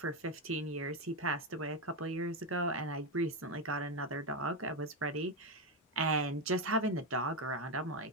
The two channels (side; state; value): both; normal; correlation 0.09